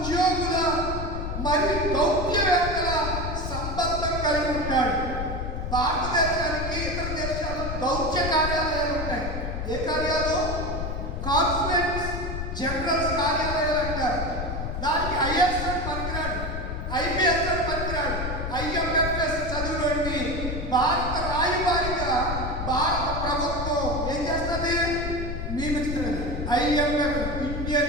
మరియు దౌత్యవేత్తల సంబంధం కలిగి ఉంటాడు. భారతదేశానికి ఇతర దేశాలు దౌత్య కార్యాలయాలు ఉంటాయి. ఏ కార్యాలు? కాన్సులేట్స్ జనరల్స్ కార్యాలయాలు అంటారు. దానికి ఐఎస్ అని పనికిరాడు, ఐపీఎస్ అని పనికిరాడు, ఐఎంఎఫ్ఎస్ చదువులోని భారత రాయబారిగా భారత ప్రభుత్వం ఏం చేస్తుంది? నియమిస్తున్నది. IMF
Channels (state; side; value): noise; left; rumble, 4 dB below the sound